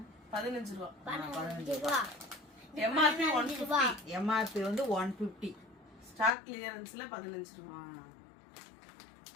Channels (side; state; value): right; drops out; at 6.4 s